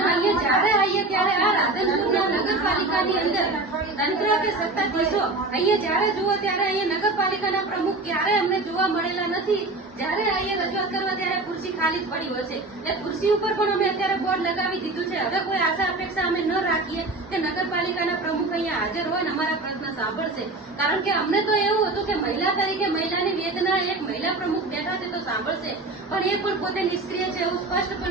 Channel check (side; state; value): left; quieter; 3.1 dB